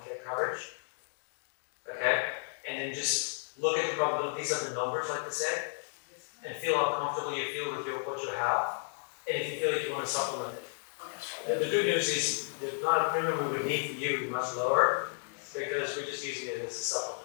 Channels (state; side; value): silent; right; digital silence